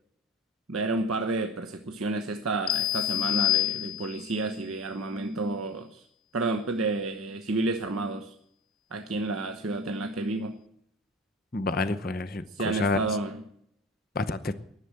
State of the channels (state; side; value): normal; both; correlation 0.32